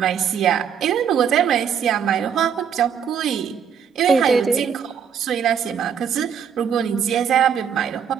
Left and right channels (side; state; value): left; quieter; 7.7 dB